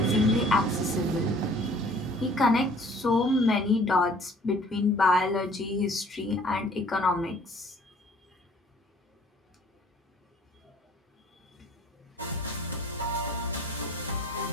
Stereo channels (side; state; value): both; normal; correlation 0.54